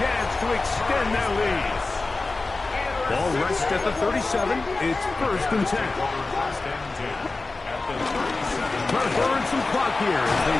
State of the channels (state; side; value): quieter; right; 3.5 dB